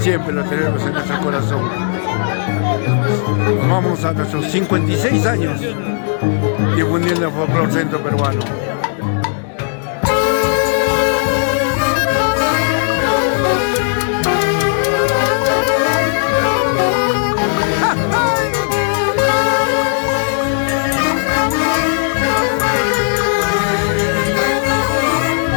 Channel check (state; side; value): silent; right; digital silence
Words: lo tenemos en nuestro corazón. Nos vamos a nuestros 56 años difundiendo el folclore centro peruano.